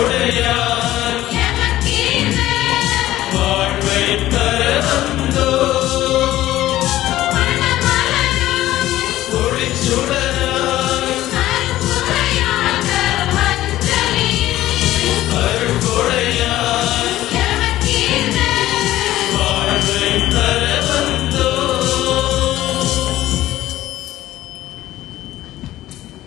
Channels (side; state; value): right; quieter; 14.8 dB